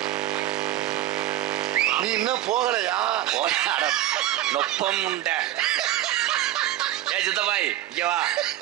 நீ இன்னும் போகலையா? நொப்பம் உண்ட. ஏ சித்தப்பாய், இங்க வா,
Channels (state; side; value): quieter; left; 13.8 dB